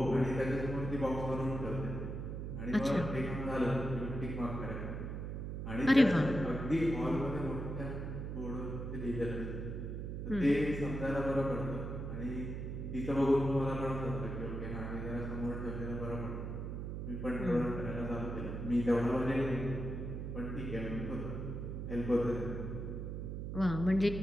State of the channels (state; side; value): noise; right; hum, 5 dB below the sound